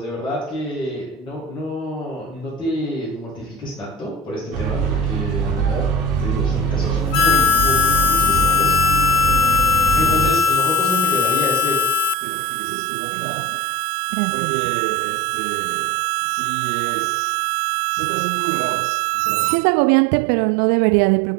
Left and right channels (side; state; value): left; drops out; at 12.2 s